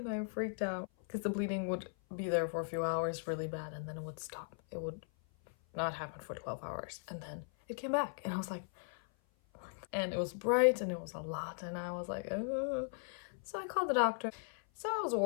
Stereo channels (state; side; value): silent; right; 52 dB below the other